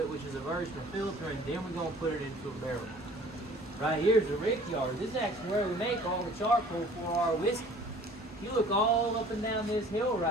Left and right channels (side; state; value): both; normal; correlation 0.50